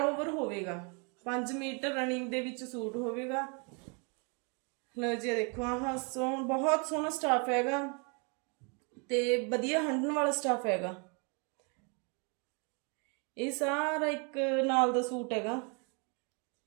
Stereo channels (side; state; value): left; quieter; 35.3 dB